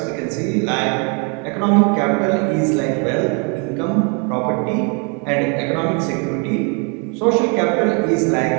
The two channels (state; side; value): quieter; left; 35.6 dB